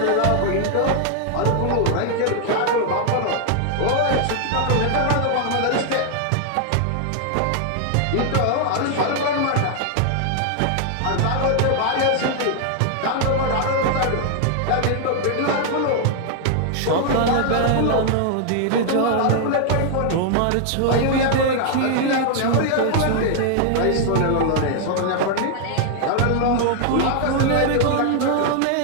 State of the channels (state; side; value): different; both; correlation 0.00